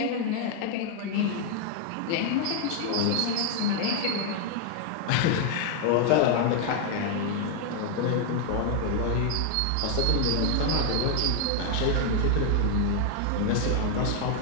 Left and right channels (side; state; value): both; different; correlation 0.00